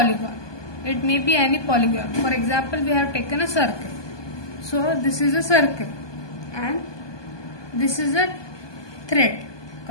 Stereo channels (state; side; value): late; right; 1.2 ms